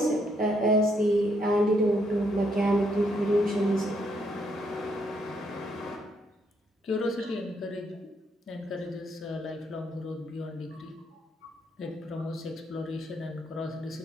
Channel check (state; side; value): normal; both; correlation 0.74